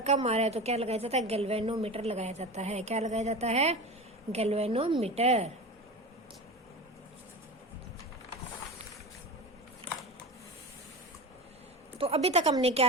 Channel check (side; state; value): both; normal; correlation 0.27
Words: आ रहा है तो क्या लगाया जाता है? गैल्वेनोमीटर लगाया जाता है। क्या लगाया जाता है? गैल्वेनोमीटर। तो अभी तक हमने